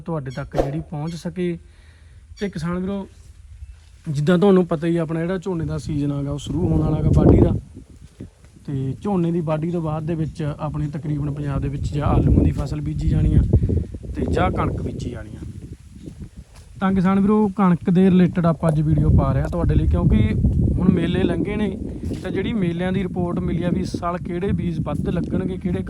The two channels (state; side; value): identical; both; correlation 1.00